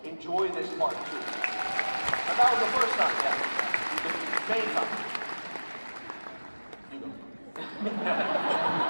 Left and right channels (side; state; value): both; inverted; correlation -1.00